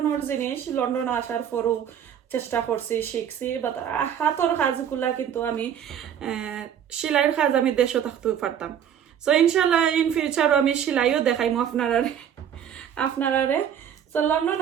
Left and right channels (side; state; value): left; quieter; 9.1 dB